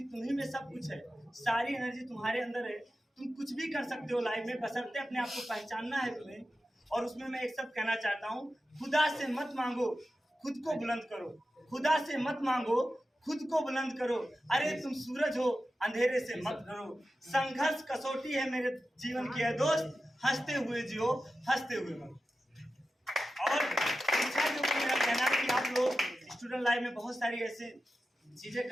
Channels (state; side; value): normal; both; correlation 0.93